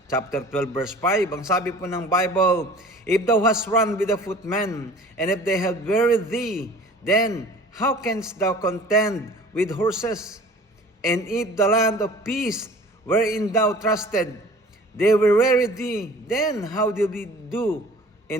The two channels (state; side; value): normal; both; correlation 0.45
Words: chapter 12 verse 5. Ang sabi po ng Bible, "If thou hast run with the footmen, and if they have wearied thee, then how canst thou contend with horses? And if the land of peace wherein thou trusted, they will weary thee, then how do we do